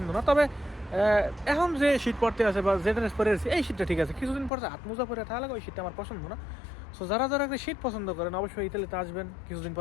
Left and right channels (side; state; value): right; drops out; at 4.5 s